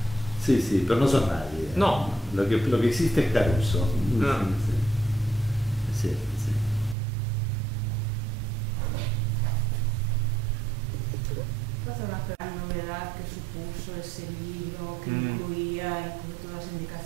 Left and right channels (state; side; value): drops out; left; at 7.0 s